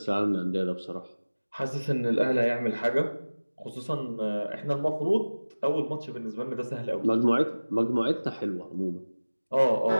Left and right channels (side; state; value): both; inverted; correlation -1.00